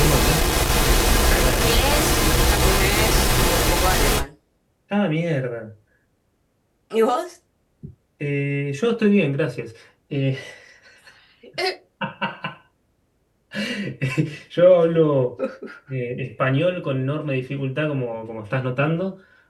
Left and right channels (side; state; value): both; identical; correlation 1.00